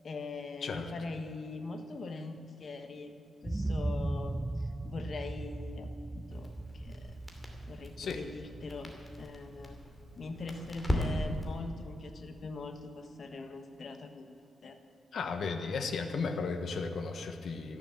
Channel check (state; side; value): normal; both; correlation 0.85